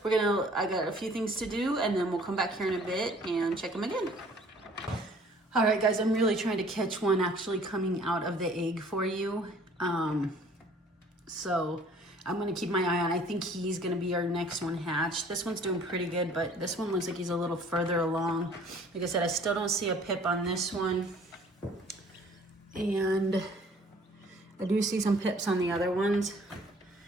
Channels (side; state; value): both; normal; correlation 0.54